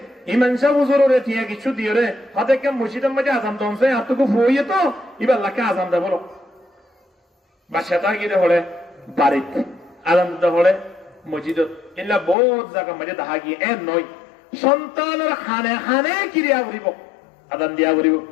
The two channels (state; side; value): drops out; right; at 12.4 s